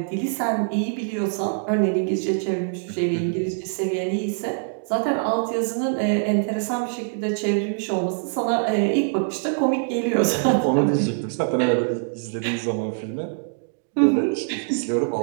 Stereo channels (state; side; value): silent; left; digital silence